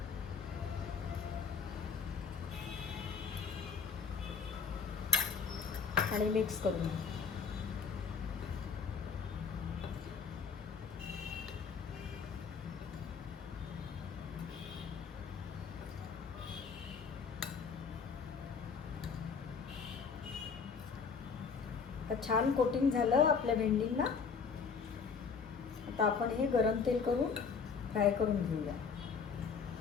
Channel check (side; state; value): right; quieter; 5.8 dB